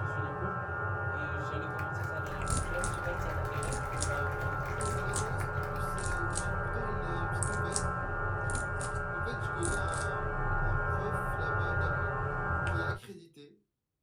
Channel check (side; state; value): both; identical; correlation 1.00